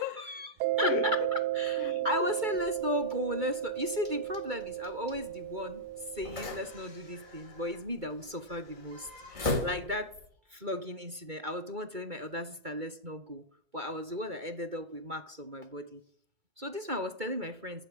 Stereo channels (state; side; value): late; left; 2.2 ms